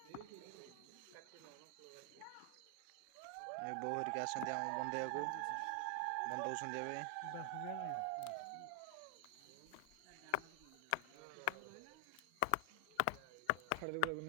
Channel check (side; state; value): both; different; correlation 0.00